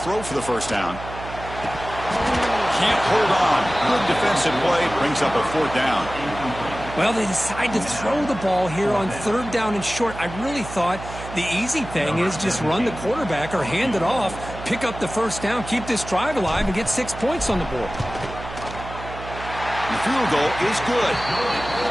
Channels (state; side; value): noise; right; hum, 11 dB below the sound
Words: for the first down. Can't hold on. Good defensive play, brings up a 4th down. Well, they decide to throw the ball here on 3rd down and short. I really thought the easy thing is just run the quarterback or hand it off, pick up the first down, keep this drive alive, and get 6 points on the board. The field goal is good.